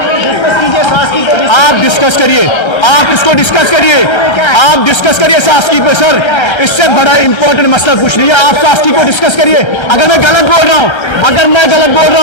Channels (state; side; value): late; right; 1.3 ms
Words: आप डिस्कस करिए, आप इसको डिस्कस करिए, आप डिस्कस करिए सास्की पे सर। इससे बड़ा इंपॉर्टेंट मसला कुछ नहीं है। आप सास्की को डिस्कस करिए। अगर मैं गलत बोल रहा